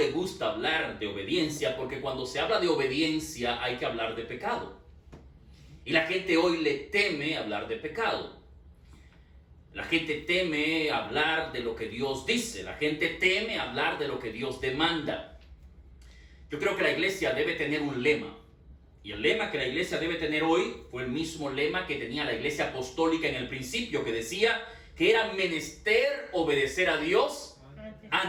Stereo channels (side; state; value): both; identical; correlation 1.00